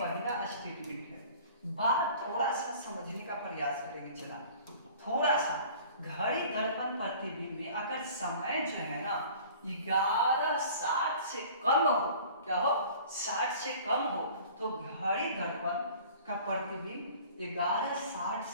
स्टेटमेंट है। बात थोड़ा सा समझने का प्रयास करेंगे। चला थोड़ा सा, घड़ी दर्पण प्रतिबिंब में अगर समय जो है ना 11:60 से कम हो, क्या हो 60 से कम हो, तो घड़ी दर्पण का प्रतिबिंब 11:60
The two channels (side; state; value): both; inverted; correlation -0.47